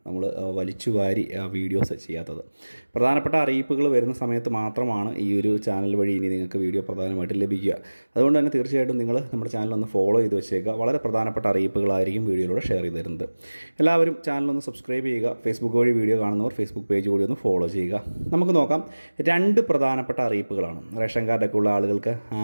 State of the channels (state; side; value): inverted; both; correlation -1.00